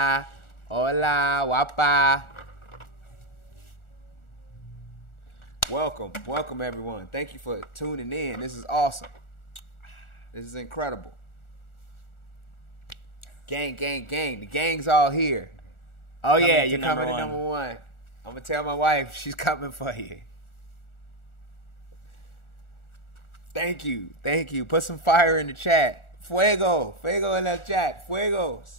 hola, guapa. Welcome everyone. Thank you for tuning in. This is awesome. This is incredible. Gang. The gang's all here. Oh Coming yeah, to you're coming to number number one. I'm gonna tell my wife she's coming for you. Thank you. Put some fire in the chat. Fuego en el chat.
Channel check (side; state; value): right; late; 1.4 ms